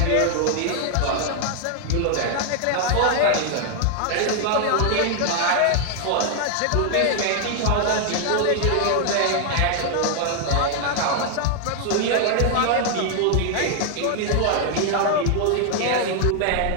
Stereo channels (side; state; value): both; different; correlation 0.00